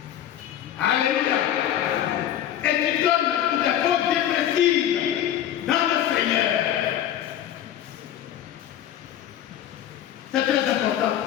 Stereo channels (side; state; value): right; quieter; 11.1 dB